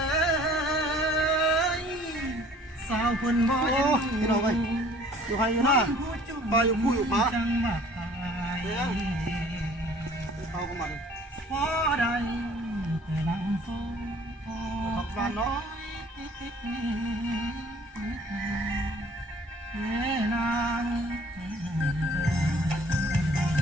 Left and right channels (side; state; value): both; normal; correlation 0.54